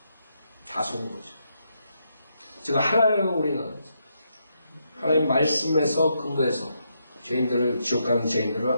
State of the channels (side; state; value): both; inverted; correlation -0.80